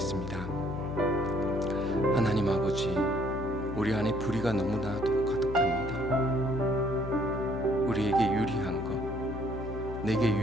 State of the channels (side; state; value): left; noise; hum, 8 dB below the sound